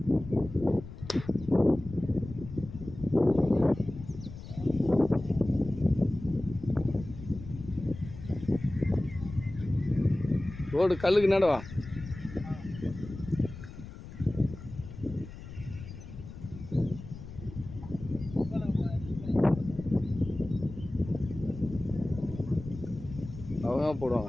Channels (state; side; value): noise; left; rumble, 13 dB below the sound